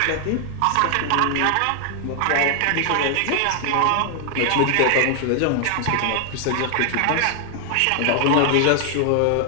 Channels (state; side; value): different; both; correlation 0.00